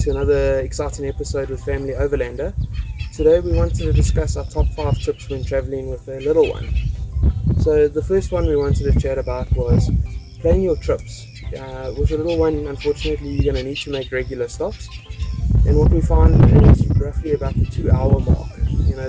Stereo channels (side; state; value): both; identical; correlation 1.00